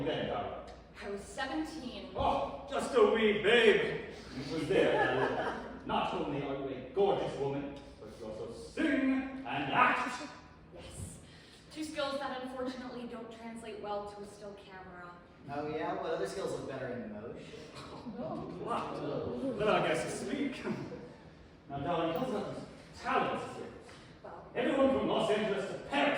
you then, Darla? I I was 17. Oh, just a wee babe. It was there. Not only are you a gorgeous woman, but you also sing and act. Yes. Two skills that unfortunately don't translate well to a still camera. Oh yeah? What other skills look better in motion? What? Then I guess to speak. Now, darling, tell us about these talents of yours. Well, Everyone from Los Angeles to Paris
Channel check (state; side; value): identical; both; correlation 1.00